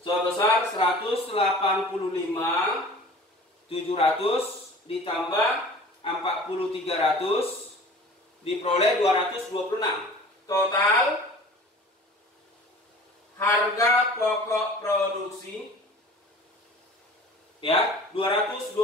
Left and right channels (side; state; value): both; normal; correlation 0.43